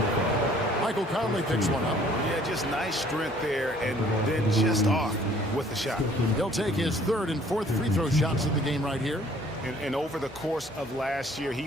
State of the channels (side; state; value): both; normal; correlation 0.57